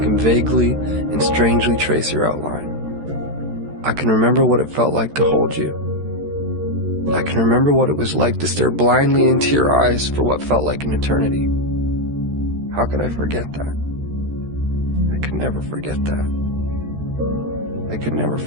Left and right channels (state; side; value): late; left; 13 ms